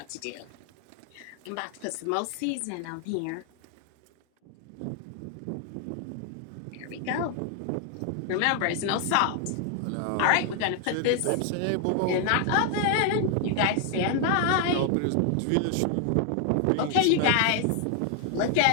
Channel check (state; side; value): different; both; correlation 0.00